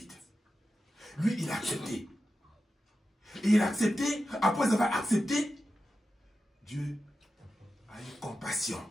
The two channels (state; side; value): normal; both; correlation 0.91